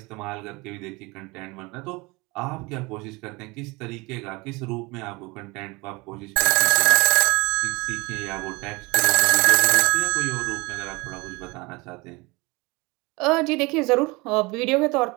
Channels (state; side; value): quieter; left; 24.8 dB